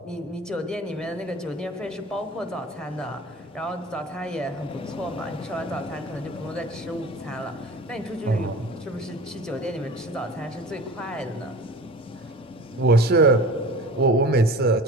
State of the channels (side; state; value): both; normal; correlation 0.39